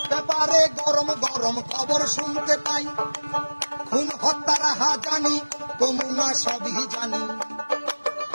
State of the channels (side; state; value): both; inverted; correlation -1.00